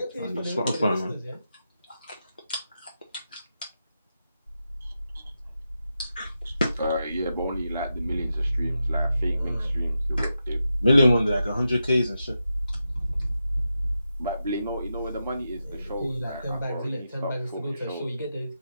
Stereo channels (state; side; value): inverted; both; correlation -0.88